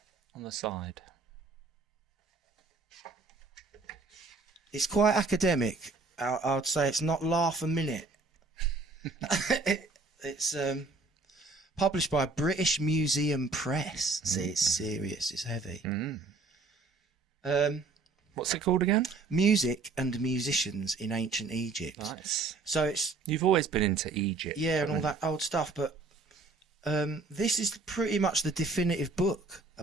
On the side. It's quite academic. I'd say it's not laugh a minute. It's published by British Museum Press. See, it's serious. It's heavy. What's it called again? Music and Musicians in Ancient Egypt. Nice. So it's You've always been into Egypt. yeah, and all that old stuff. But this is pretty much the definitive book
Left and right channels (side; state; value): left; quieter; 3.7 dB